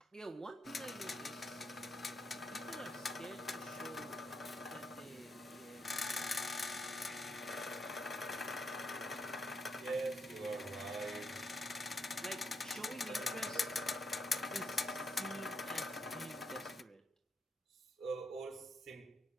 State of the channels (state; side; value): normal; both; correlation 0.79